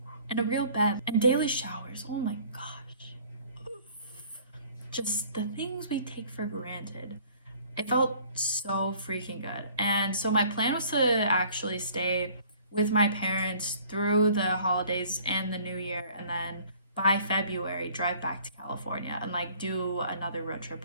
and a real bed and daily showers. Oh my gosh, just the things we take for granted. It felt so freaking good. And so my plan was to actually stay with my parents through the holidays and the new year, and then by February drive back to California and do another road trip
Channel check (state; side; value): inverted; both; correlation -0.54